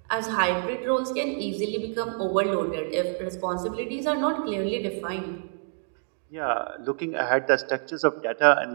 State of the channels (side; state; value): left; silent; 60 dB below the other